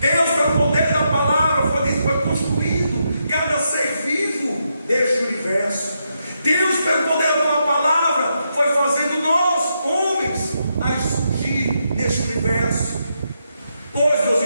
Deus, pelo poder da palavra, foi construindo cada ser vivo deste universo. Deus, pelo poder da palavra, foi fazendo nós, homens, a surgir neste universo. Pois, meus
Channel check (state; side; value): inverted; both; correlation -0.82